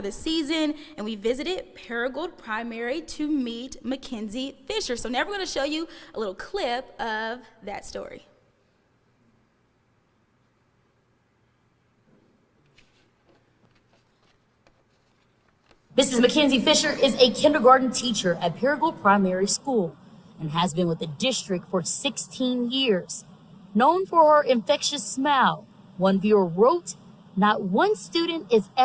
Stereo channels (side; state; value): both; identical; correlation 1.00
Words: the season, and we visited Paragould Primary to meet Mackenzie Fisher. So now we're going to show you a little clip of that story. Mrs. Mackenzie Fisher is a kindergarten teacher at Paragould Primary School and has been with the district for 16 years. Known for her infectious smile, one viewer wrote, "Not one student is